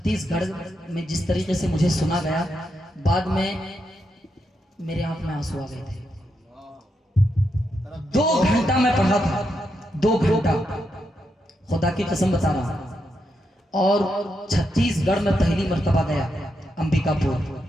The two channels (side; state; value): both; normal; correlation 0.83